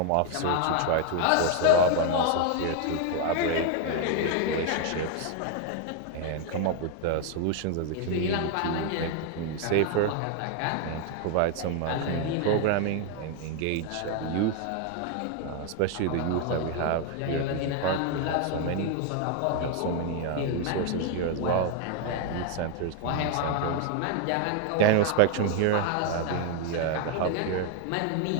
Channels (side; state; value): both; different; correlation 0.01